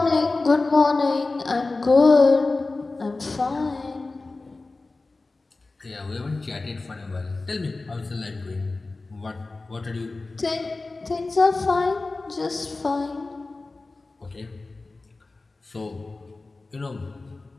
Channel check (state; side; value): quieter; right; 3.4 dB